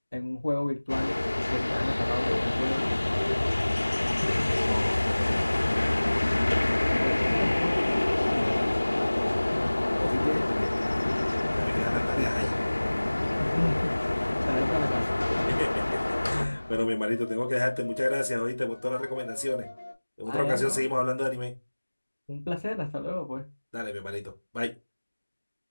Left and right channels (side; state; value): both; inverted; correlation -1.00